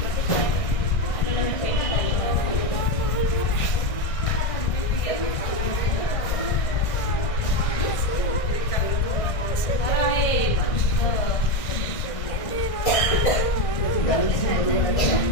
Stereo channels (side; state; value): right; late; 1.6 ms